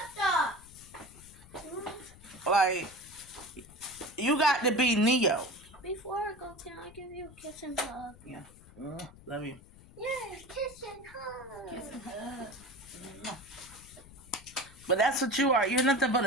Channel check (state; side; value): noise; left; rumble, 21 dB below the sound